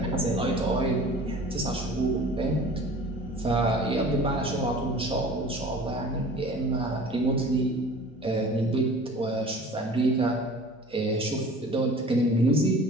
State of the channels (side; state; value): both; normal; correlation 0.44